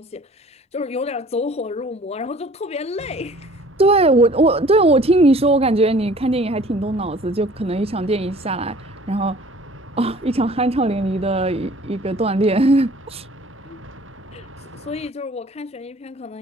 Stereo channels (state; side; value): normal; both; correlation 0.51